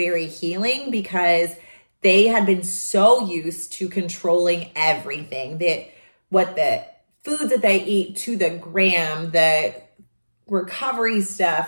healing because they had been so used to controlling everything, what the foods that they eat to the gram, the recovery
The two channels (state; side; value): inverted; both; correlation -1.00